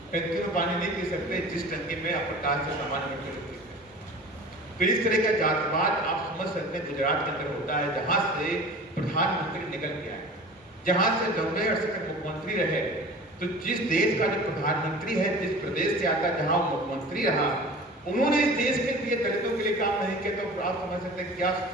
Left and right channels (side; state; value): both; normal; correlation 0.39